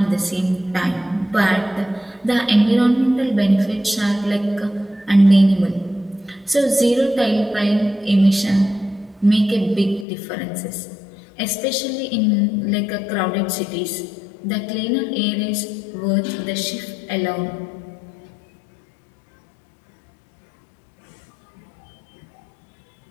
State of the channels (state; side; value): drops out; right; at 10.1 s